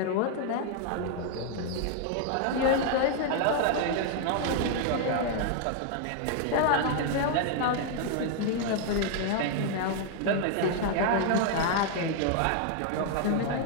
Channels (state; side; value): different; both; correlation 0.00